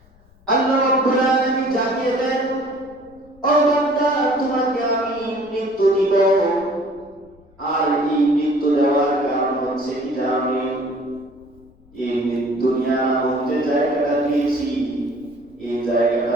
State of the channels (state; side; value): noise; left; rumble, 28 dB below the sound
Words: আল্লাহ রাব্বুল আলামিন জানিয়ে দেন, ও বান্দা তোমাকে আমি মৃত্যু দিব, আর এই মৃত্যু দেওয়ার কারণ হচ্ছে কি জানি? এই দুনিয়া মধ্যে জায়গাটা দিয়েছি, এই জায়গাটা